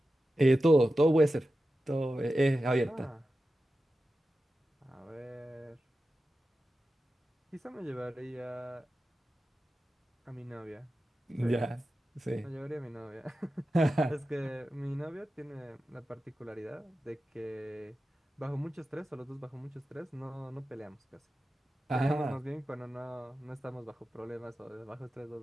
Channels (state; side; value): normal; both; correlation 0.93